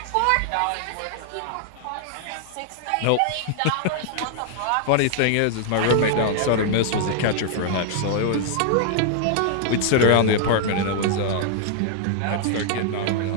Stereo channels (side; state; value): both; different; correlation -0.01